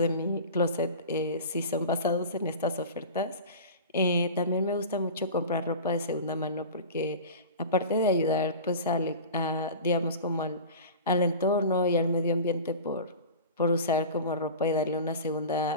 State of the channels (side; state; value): both; inverted; correlation -0.34